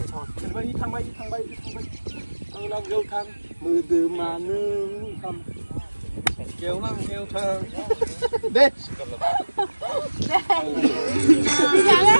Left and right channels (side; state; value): both; inverted; correlation -1.00